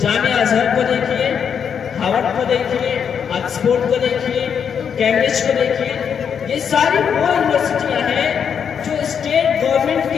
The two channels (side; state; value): right; quieter; 7.4 dB